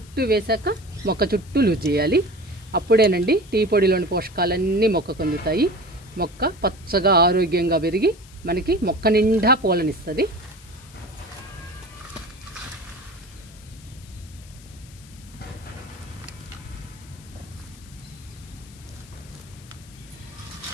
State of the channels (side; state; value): left; noise; hiss, 22 dB below the sound